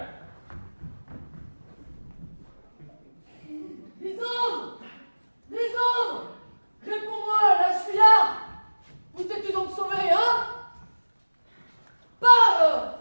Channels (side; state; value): both; inverted; correlation -1.00